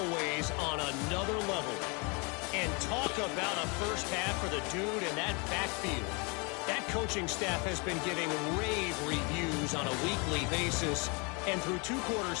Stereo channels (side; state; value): right; quieter; 31.1 dB